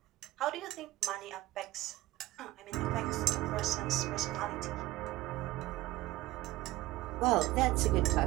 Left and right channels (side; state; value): left; quieter; 17.4 dB